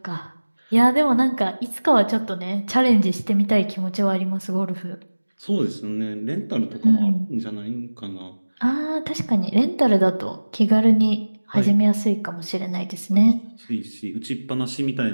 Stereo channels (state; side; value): inverted; both; correlation -1.00